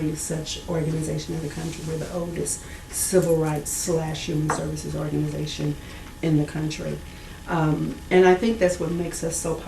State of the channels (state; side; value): identical; both; correlation 1.00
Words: such organization in the country. We're the oldest civil rights / human services organization in the country. And I think that's what makes us so